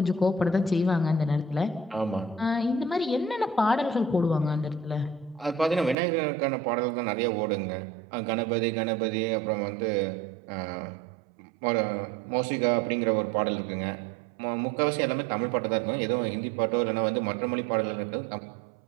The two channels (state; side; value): drops out; left; at 6.0 s